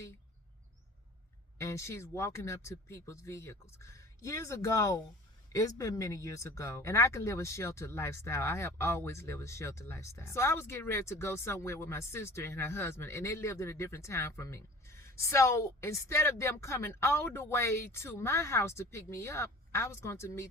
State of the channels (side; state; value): both; normal; correlation 0.43